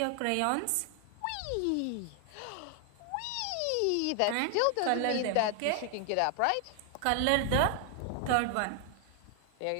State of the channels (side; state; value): both; different; correlation 0.00